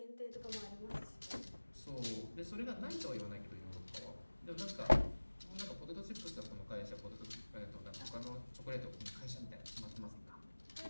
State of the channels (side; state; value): both; inverted; correlation -1.00